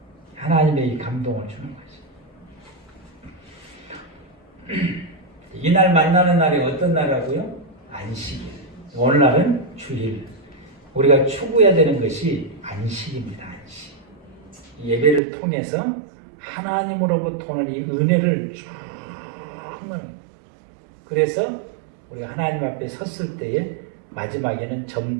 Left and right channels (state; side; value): drops out; left; at 15.2 s